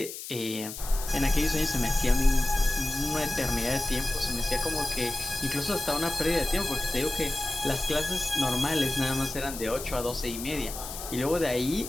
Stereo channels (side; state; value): left; noise; hiss, 9 dB below the sound